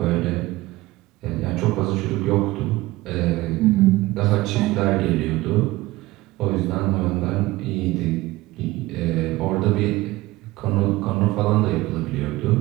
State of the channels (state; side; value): quieter; left; 19.1 dB